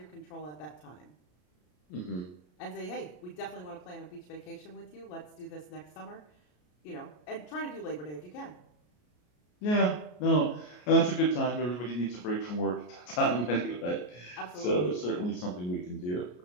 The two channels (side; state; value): right; late; 33 ms